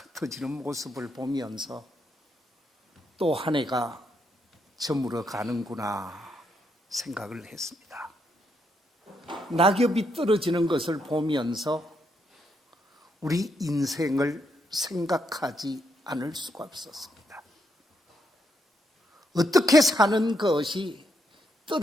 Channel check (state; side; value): normal; both; correlation 0.78